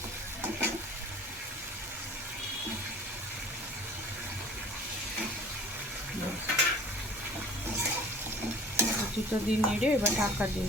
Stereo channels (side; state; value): both; normal; correlation 0.47